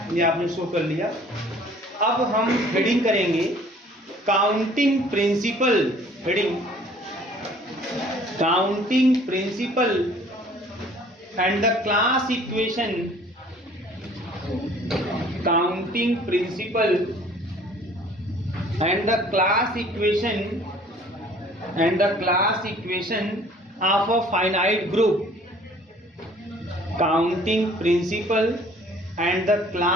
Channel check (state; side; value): normal; both; correlation 0.54